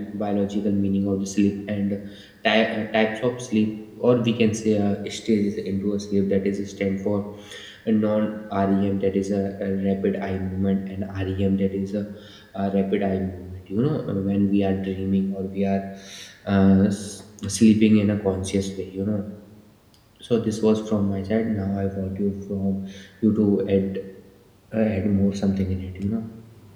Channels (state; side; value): identical; both; correlation 1.00